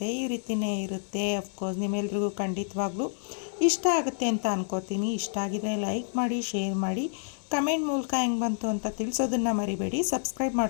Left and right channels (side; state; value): right; silent; 57 dB below the other